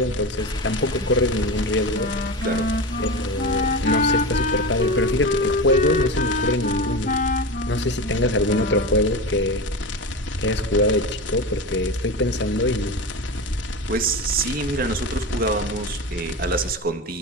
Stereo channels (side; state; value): both; normal; correlation 0.24